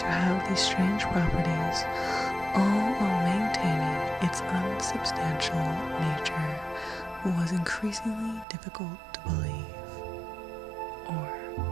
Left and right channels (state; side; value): drops out; left; at 8.5 s